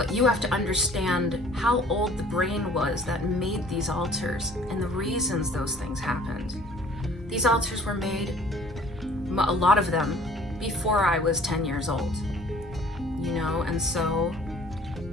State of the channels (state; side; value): normal; both; correlation 0.53